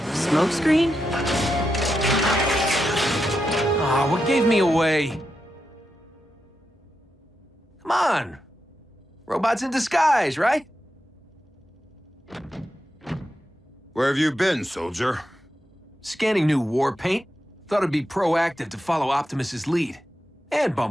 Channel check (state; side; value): normal; both; correlation 0.86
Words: Smokescreen? Ah, what gave me away? Come on. Robots in disguise, right? Where have you been, soldier? Scanning new war paint. Thought it'd be proactive to follow Optimus's lead. And